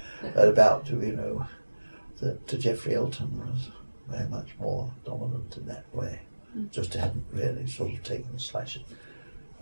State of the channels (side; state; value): both; inverted; correlation -1.00